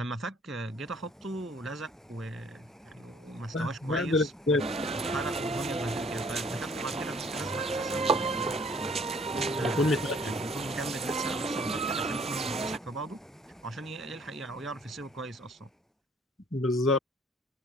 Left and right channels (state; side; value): normal; both; correlation 0.58